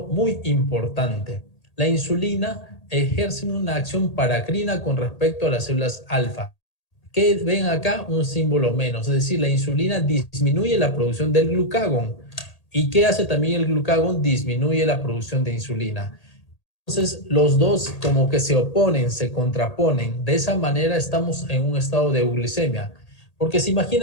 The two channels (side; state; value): right; late; 1.8 ms